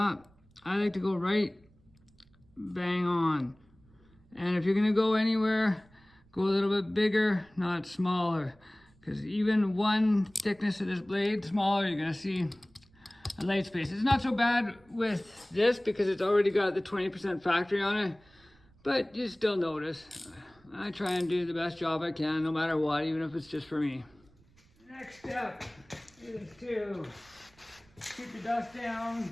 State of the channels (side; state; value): right; noise; rumble, 30 dB below the sound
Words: I like to go right bang on. And if you're gonna go anywhere, go a little bit bigger, not smaller. Because even one thickness of this blade smaller, you're gonna see a light space. It's not so bad with this because it's already got the 20% factory on it, but you still notice. I try and do the best job I can, no matter what, even if it's just for me. Next step is to keep the dust down.